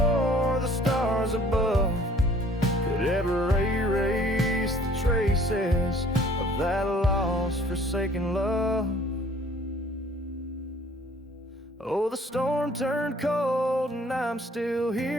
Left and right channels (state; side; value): normal; both; correlation 0.56